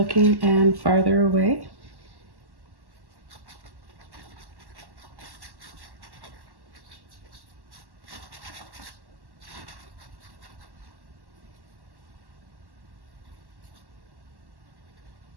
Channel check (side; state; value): left; late; 1.1 ms